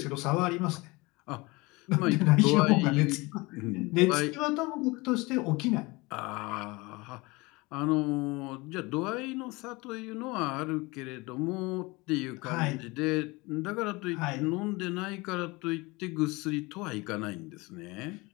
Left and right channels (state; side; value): quieter; right; 24.0 dB